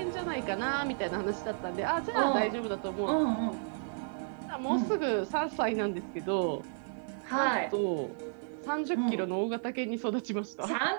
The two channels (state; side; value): silent; left; digital silence